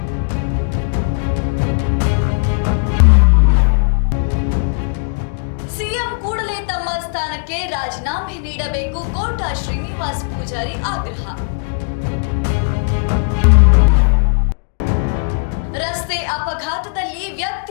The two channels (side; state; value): right; silent; digital silence